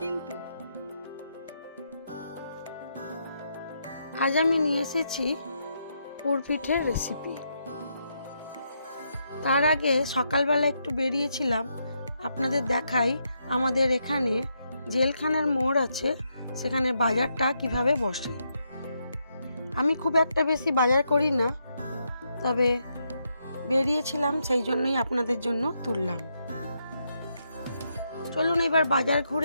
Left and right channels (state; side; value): inverted; both; correlation -0.80